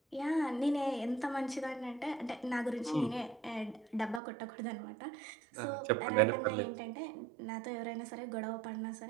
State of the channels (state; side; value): drops out; left; at 4.2 s